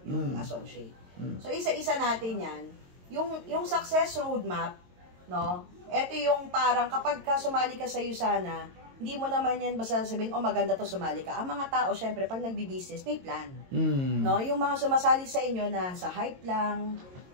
yung associate. So, isa-isa natin yan. Yung success roadmap, no? Ito yung parang kapag sumali ka sa USANA, hindi mo naman yan basta sabihin, maganda to, sumali ka. Ang mga tao, syempre, pag nagbi-business, may plan. No? Yung mga sumasali sa inyo na sa hype lang,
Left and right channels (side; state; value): left; late; 22 ms